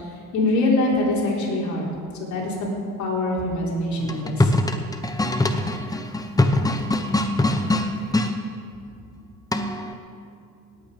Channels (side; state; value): both; normal; correlation 0.55